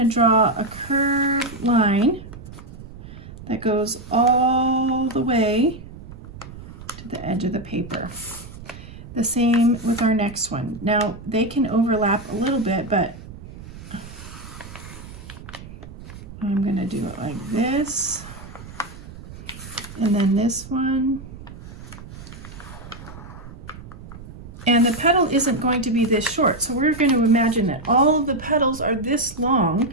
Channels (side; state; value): right; noise; rumble, 15 dB below the sound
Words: draw a curved line that goes all the way to the edge of the paper. The same with our next one. Now they can overlap a little bit, but I'm going to do it like this, and then this one. And the petal isn't going to be this short, so we're going to imagine that all of the petals are this long.